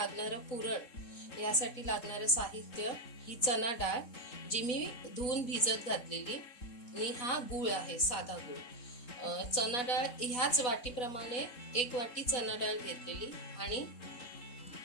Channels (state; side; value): late; right; 4.0 ms